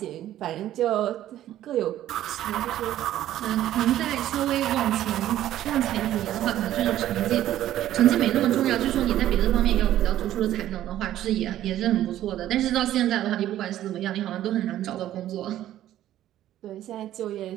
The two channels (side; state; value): left; quieter; 12.8 dB